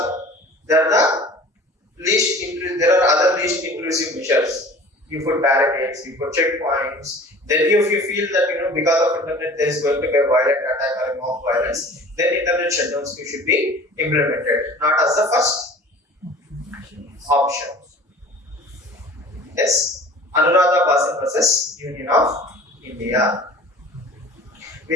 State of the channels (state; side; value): normal; both; correlation 0.44